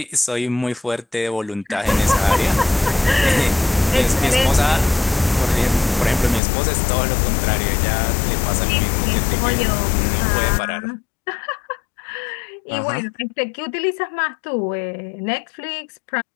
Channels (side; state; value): right; drops out; at 6.4 s